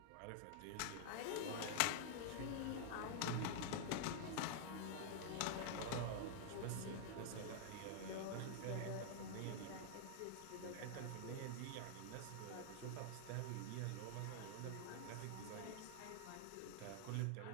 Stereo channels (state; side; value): different; both; correlation 0.00